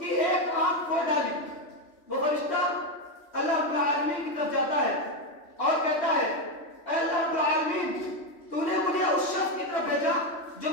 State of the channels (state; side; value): late; right; 3.1 ms